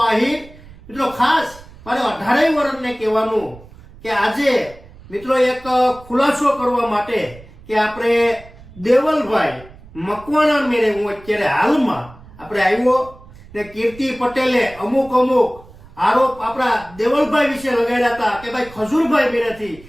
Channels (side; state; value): right; noise; rumble, 21 dB below the sound